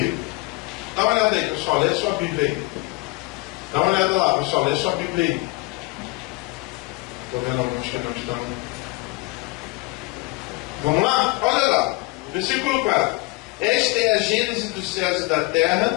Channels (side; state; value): right; quieter; 23.4 dB